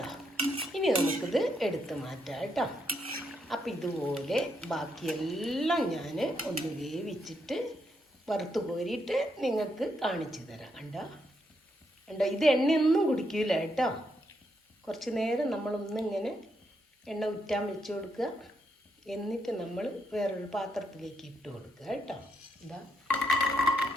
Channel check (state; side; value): normal; both; correlation 0.78